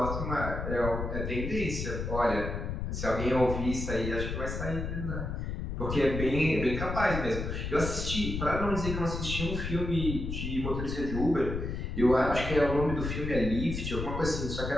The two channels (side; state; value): left; noise; rumble, 4 dB below the sound